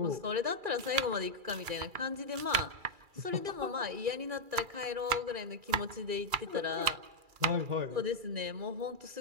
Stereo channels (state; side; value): late; left; 2.3 ms